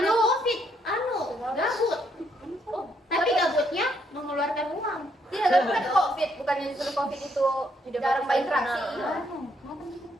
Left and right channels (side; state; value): both; normal; correlation 0.73